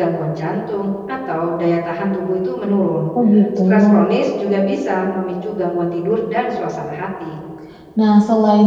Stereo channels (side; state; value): both; identical; correlation 1.00